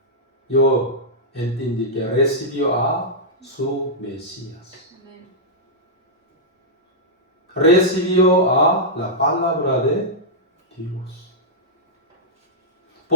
Yo entendí que recibió a su Mesías. Recibió a la palabra de Dios.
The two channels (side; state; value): both; normal; correlation -0.10